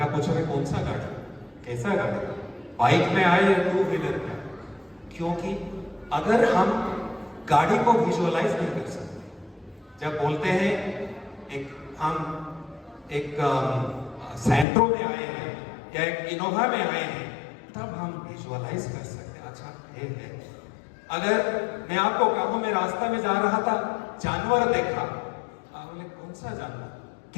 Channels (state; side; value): drops out; right; at 14.7 s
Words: पूछोगे कौन सा गाड़ी, कैसा गाड़ी, बाइक में आए या टू व्हीलर में? क्योंकि अगर हम गाड़ी को विजुअलाइज नहीं कर सकते, जब बोलते हैं हम एक सेंट्रो में आए हैं या एक इनोवा में आए हैं, तब हम विजुअलाइज कर सकते हैं अच्छा है। अगर मैं आपको कहूं मैं रास्ता में जा रहा था, जानवर देखा, आप बोले कौन सा जानवर,